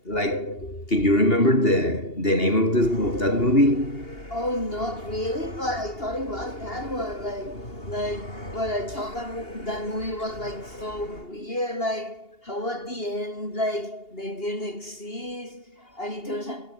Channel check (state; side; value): late; right; 2.8 ms